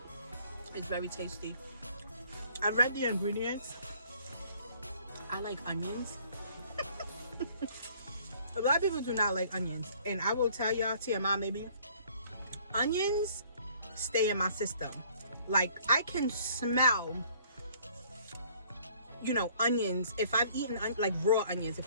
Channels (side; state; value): both; inverted; correlation -0.58